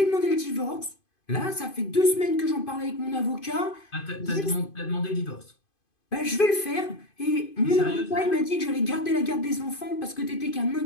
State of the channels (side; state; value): right; late; 2.5 ms